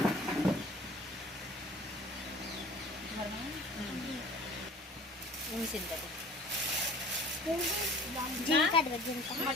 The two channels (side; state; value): both; normal; correlation 0.46